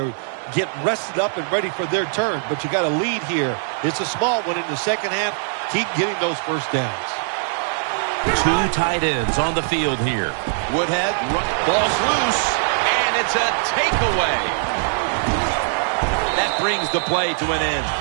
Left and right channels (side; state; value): left; silent; digital silence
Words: rested up and ready for their turn. But you got a lead here. It's a small one in the 2nd half. Keep getting those first downs. 2 tight ends on the field here. Woodhead, ball's loose, and it's a takeaway. That brings the play to an end.